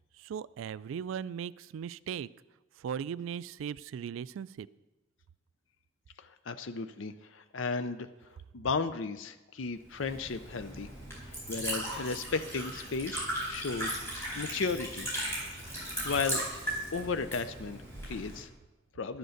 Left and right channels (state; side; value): normal; both; correlation 0.01